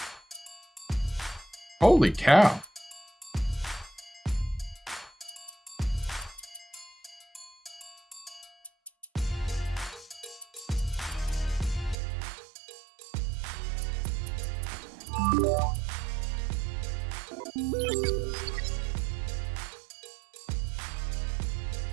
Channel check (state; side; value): drops out; left; at 12.0 s